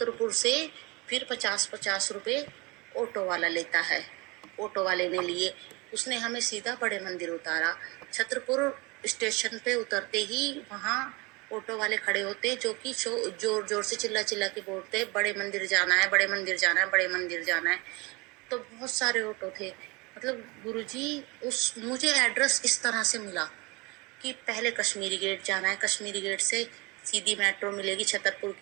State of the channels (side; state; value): left; quieter; 26.1 dB